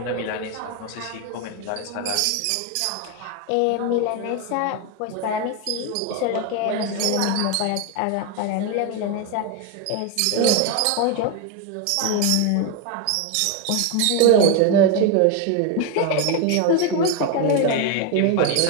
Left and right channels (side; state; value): both; different; correlation 0.02